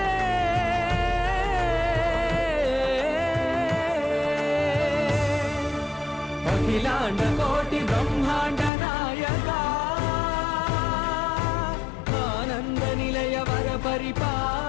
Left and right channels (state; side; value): drops out; right; at 8.7 s